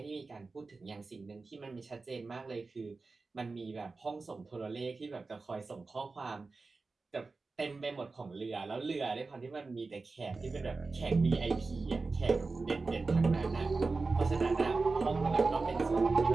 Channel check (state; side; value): quieter; left; 3.9 dB